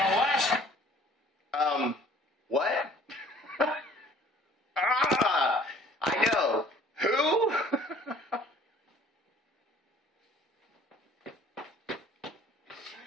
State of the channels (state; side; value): normal; both; correlation 0.54